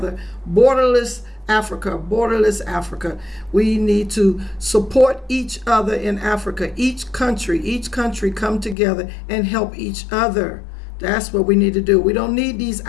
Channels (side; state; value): right; drops out; at 8.8 s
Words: Borderless Africa, borderless Africa. We need to support each other in Africa. Each country come together and help each other. That's what we need to do. We don't need these